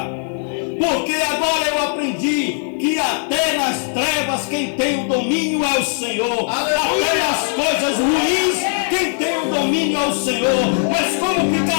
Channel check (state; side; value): silent; right; 58 dB below the other